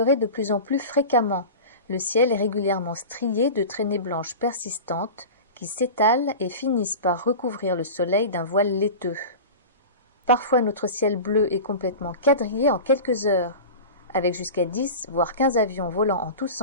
de plus en plus fréquemment. Le ciel est régulièrement strié de traînées blanches persistantes qui s'étalent et finissent par recouvrir le soleil d'un voile laiteux. Parfois notre ciel bleu est complètement quadrillé en quelques heures, avec jusqu'à 10 voire 15 avions volant en tous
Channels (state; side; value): inverted; both; correlation -0.31